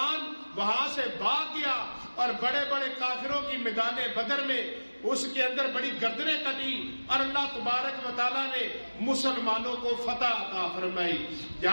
وہاں سے بھاگ گیا اور بڑے بڑے کافروں کی میدان بدر میں اس کے اندر بڑی گردنیں کٹی، اور اللہ تبارک و تعالیٰ نے مسلمانوں کو فتح عطا فرمائی۔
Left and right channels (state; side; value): inverted; both; correlation -1.00